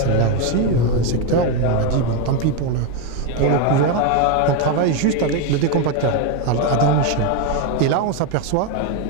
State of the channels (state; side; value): different; both; correlation 0.02